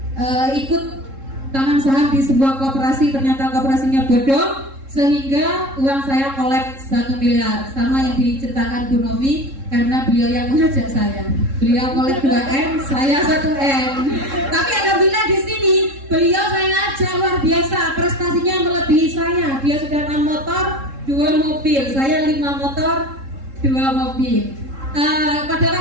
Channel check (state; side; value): late; left; 3.7 ms